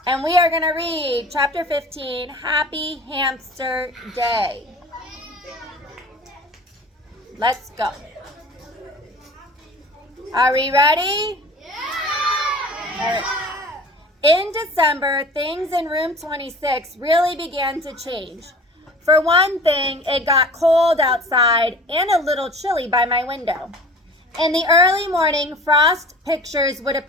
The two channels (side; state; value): both; normal; correlation 0.42